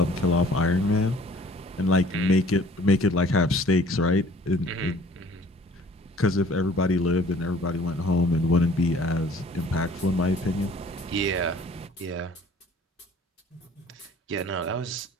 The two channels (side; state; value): both; normal; correlation 0.52